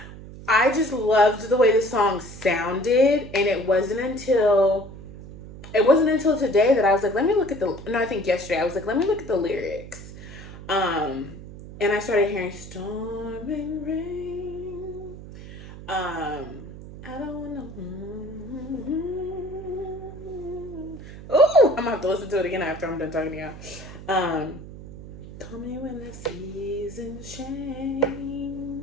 I just loved the way the song sounded, and it wasn't until today that I was like, I think yesterday I was like, let me look at the lyrics. And I started hearing storm and rain. I don't know. Ooh, I'm gonna have to listen to it again after I'm done talking to y'all. Call me when the seasons change,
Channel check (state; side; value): noise; right; hum, 14 dB below the sound